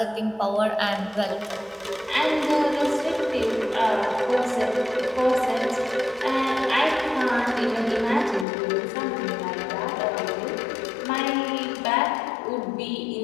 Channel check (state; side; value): drops out; right; at 8.5 s